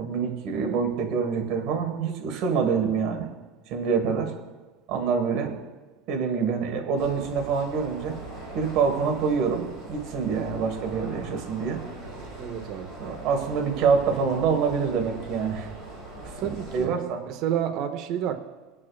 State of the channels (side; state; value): left; quieter; 5.6 dB